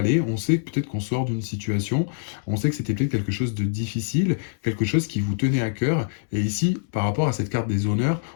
on sait peut-être qu'on sort d'une situation, on sait que c'était peut-être quelque chose de difficile, quelque chose qui vous tenait à cœur, et ici, par rapport à cette carte des honneurs,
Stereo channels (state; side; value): silent; right; digital silence